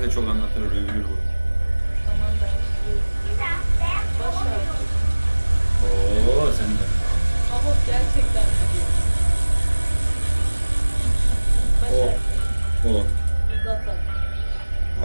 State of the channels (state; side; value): inverted; both; correlation -1.00